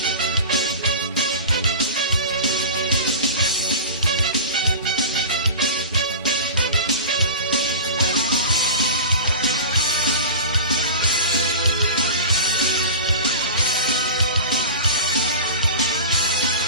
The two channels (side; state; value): both; inverted; correlation -0.33